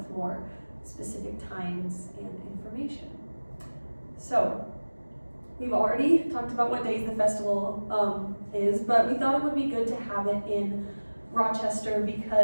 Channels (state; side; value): inverted; both; correlation -1.00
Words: more specific times and information. So, we've already talked about what days the festival is, but we thought it would be good to have it in Rochester